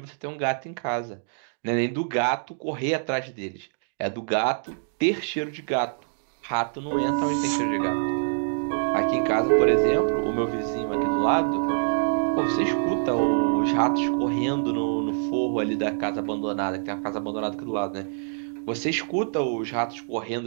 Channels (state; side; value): silent; left; digital silence